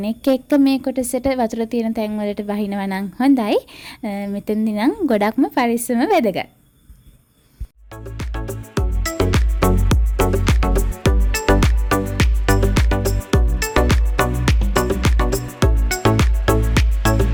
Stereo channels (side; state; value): both; identical; correlation 1.00